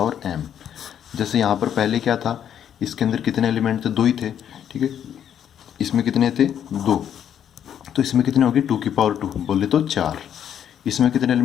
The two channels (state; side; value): quieter; right; 9.4 dB